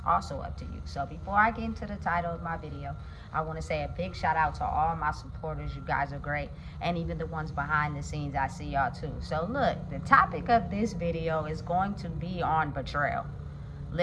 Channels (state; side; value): identical; both; correlation 1.00